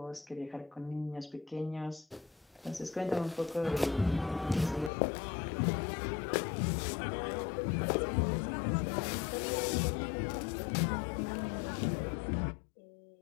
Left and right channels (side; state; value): right; drops out; at 4.9 s